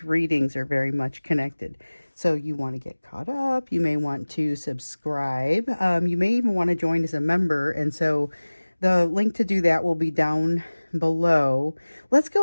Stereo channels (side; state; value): both; inverted; correlation -1.00